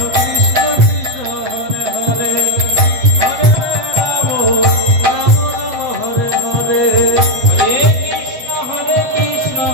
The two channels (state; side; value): late; left; 8.0 ms